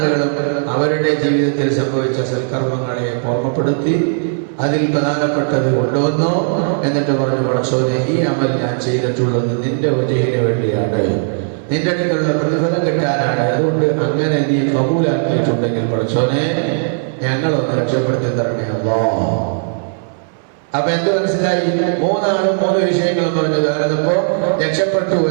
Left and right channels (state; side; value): silent; left; 66 dB below the other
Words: അവരുടെ ജീവിതത്തിൽ സംഭവിച്ച സൽക്കർമ്മങ്ങളെ ഓർമ്മപ്പെടുത്തി അതിൽ പ്രധാനപ്പെട്ടത് കൊണ്ടുവന്നു. എന്നിട്ട് പറഞ്ഞു, പടച്ചോനെ, ഈ അമൽ ഞാൻ ചെയ്തിട്ടുള്ളത് നിന്റെ വജഹിന് വേണ്ടിയാണ്, നിന്റെ അടുക്കലുള്ള പ്രതിഫലം കിട്ടാനാണ്. അതുകൊണ്ട് അങ്ങനെ നീ കബൂലാക്കിയിട്ടുണ്ടെങ്കിൽ പടച്ചോനെ ഞങ്ങളൊന്ന് രക്ഷപ്പെടുത്തി തരണേ അല്ലാ. അപ്പൊ എന്ത് മനസ്സിലായി? 3 ആളും 3 വിഷയങ്ങളും പറഞ്ഞത് അതപ്പോ രക്ഷപ്പെട്ടു